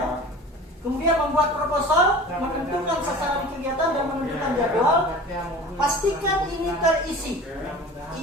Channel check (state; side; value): normal; both; correlation 0.39